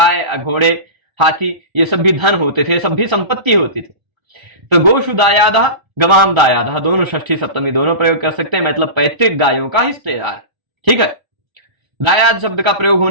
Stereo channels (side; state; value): left; late; 1.3 ms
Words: घोड़े हाथी, ये सब भी धन होते थे, सब भी संपत्ति होती थी। तो गोशु दायादः, गवाम दायादः, दोनों षष्ठी सप्तमी दोनों प्रयोग कर सकते हैं, मतलब पैतृक गायों का हिस्सेदार। ठीक है, दायाद शब्द का प्रयोग